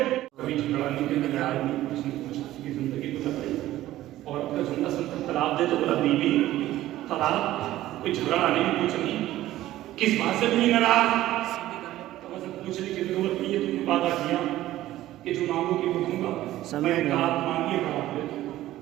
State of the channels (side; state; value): left; quieter; 14.8 dB